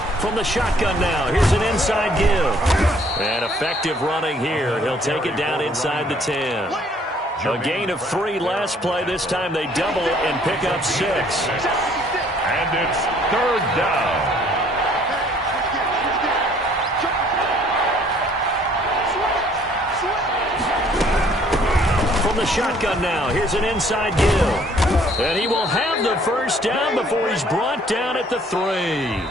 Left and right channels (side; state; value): both; normal; correlation 0.60